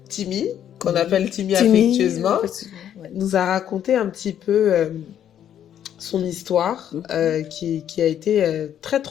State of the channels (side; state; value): right; quieter; 10.0 dB